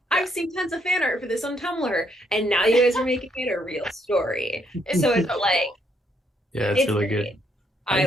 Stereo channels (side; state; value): both; normal; correlation 0.72